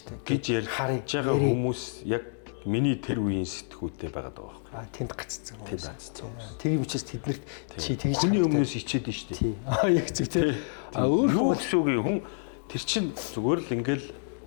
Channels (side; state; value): right; silent; 59 dB below the other